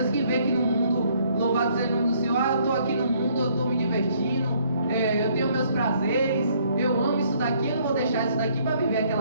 que vê que no mundo, louvado seja o nome do Senhor, eu estou aqui no mundo, eu estou me divertindo, eu tenho meus prazeres, eu amo isso daqui, eu não vou deixar isso daqui para viver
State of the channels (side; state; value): both; inverted; correlation -0.65